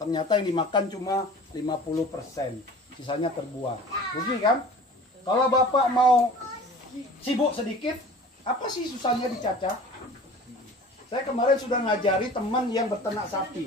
ternyata yang dimakan cuma 50%, sisanya terbuang. Rugi kan? Kalau bapak mau sibuk sedikit, apa sih susahnya dicacah? Saya kemarin sudah ngajari teman yang beternak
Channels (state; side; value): normal; both; correlation 0.42